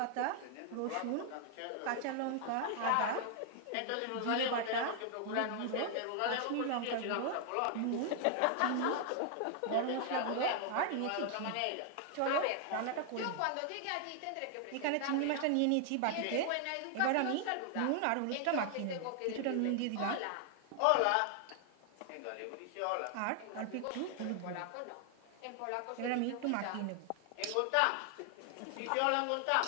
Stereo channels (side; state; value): both; different; correlation 0.00